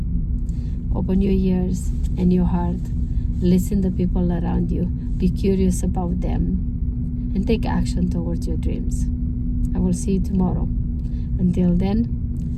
open your ears and your heart. Listen to people around you. Be curious about them. And take action towards your dreams. I will see you tomorrow. Until then,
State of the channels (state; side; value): identical; both; correlation 1.00